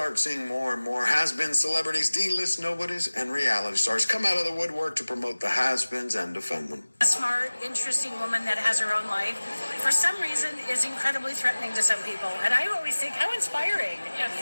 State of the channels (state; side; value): inverted; both; correlation -1.00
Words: seeing more and more has-been celebrities, D-list nobodies, and reality stars come out of the woodwork to promote the has-beens and defend them. A smart, interesting woman that has her own life, for some reason, is incredibly threatening to some people. And I always think, how inspiring.